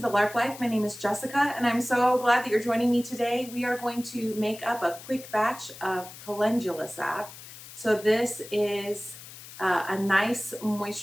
Lark Life. My name is Jessica and I'm so glad that you're joining me today. We are going to make up a quick batch of Calendula Salve. So this is a nice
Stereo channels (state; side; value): noise; left; hiss, 15 dB below the sound